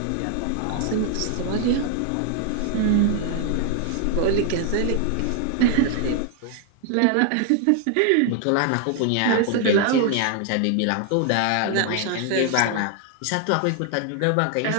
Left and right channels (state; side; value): different; both; correlation 0.00